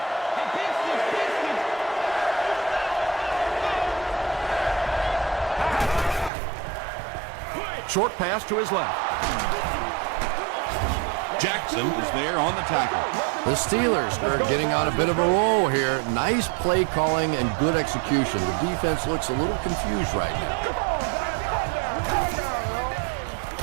Short pass to his left. Jackson is there on the tackle. The Steelers are getting on a bit of a roll here. Nice play calling and good execution. The defense looks a little confused right now.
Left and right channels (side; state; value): left; drops out; at 6.3 s